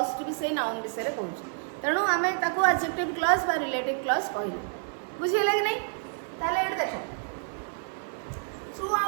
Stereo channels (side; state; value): left; silent; 59 dB below the other